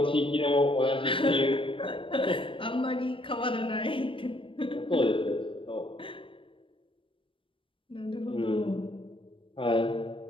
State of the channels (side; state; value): right; late; 0.25 ms